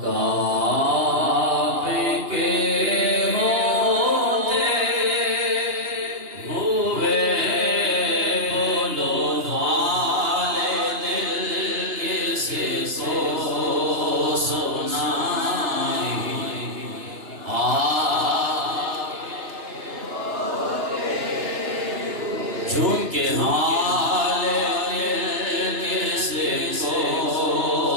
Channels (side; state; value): left; late; 2.9 ms